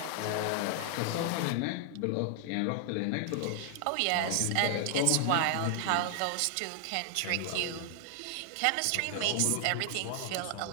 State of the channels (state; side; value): different; both; correlation 0.00